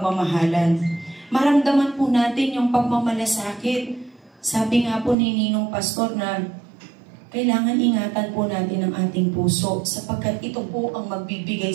Maramdaman po natin yung pagmamalasakit. Sabi nga po ni Ninong Pastor na kailangan ingatan po natin ang ating puso sapagkat ito po ang magbibigay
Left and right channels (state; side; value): drops out; left; at 5.2 s